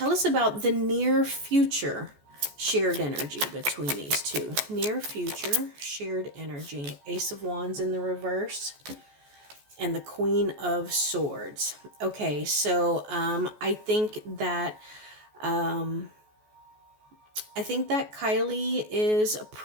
us about the near future shared energy between these two. Near future shared energy. Ace of Wands in the reverse. And the Queen of Swords. Okay, so I think that Kylie is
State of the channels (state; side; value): late; left; 14 ms